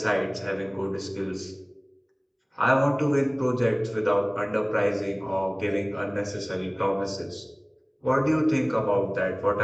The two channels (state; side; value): identical; both; correlation 1.00